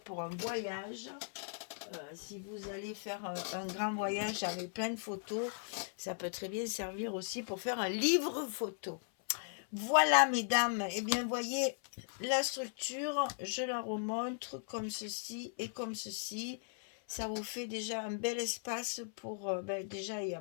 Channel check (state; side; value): silent; right; 53 dB below the other